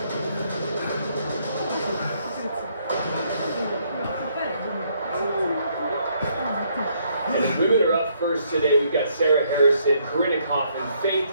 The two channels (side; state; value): both; inverted; correlation -0.70